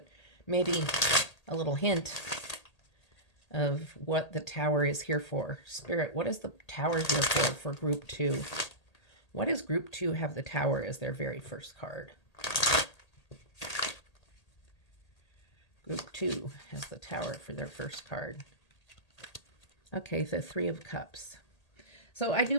maybe a little hint of what the Tower is here for. Spirit, what is the Tower here for Group 2? What does Group 2 have the Tower as their very first card? Group 2 has the Tower for their first card. Okay, the Three of Cups. So I do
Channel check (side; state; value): right; late; 1.8 ms